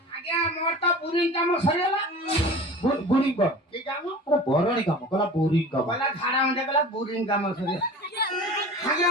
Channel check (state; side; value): normal; both; correlation 0.38